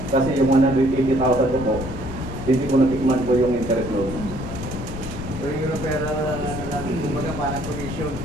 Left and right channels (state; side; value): noise; left; rumble, 8 dB below the sound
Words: kasi yung 180,000 ko po, hindi ko natikman po yung interest loan. So yung referral na kumbaga parang commission.